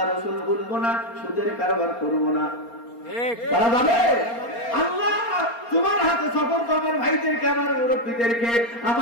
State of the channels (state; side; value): late; right; 4.3 ms